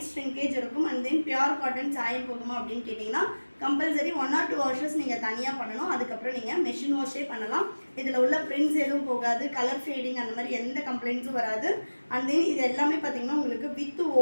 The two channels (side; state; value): both; inverted; correlation -1.00